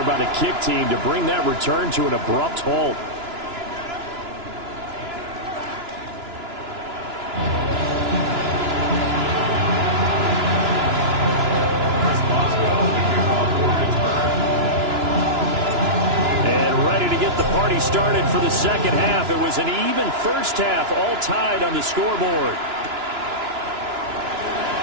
by the kick team to bring that return to an abrupt halt. to get the party started for the second half. It was an even first half, all tied on the scoreboard.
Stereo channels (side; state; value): left; late; 2.9 ms